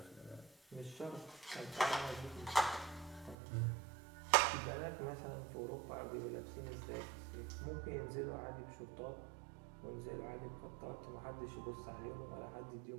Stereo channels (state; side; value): drops out; left; at 3.4 s